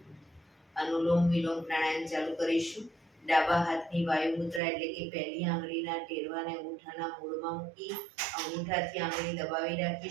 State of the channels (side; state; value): left; drops out; at 4.6 s